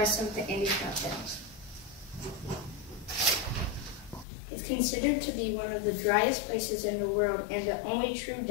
of the Andes Mountains. It's considered to be one of the driest places in the world and the only true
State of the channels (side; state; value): right; drops out; at 4.2 s